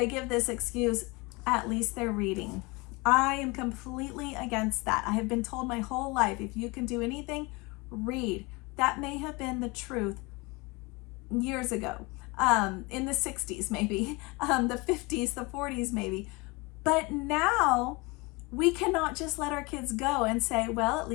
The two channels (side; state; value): right; quieter; 25.9 dB